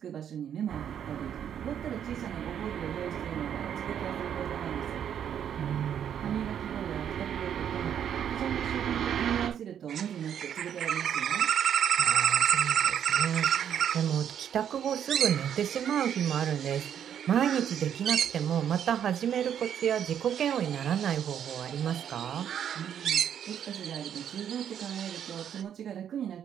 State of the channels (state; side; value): quieter; left; 9.1 dB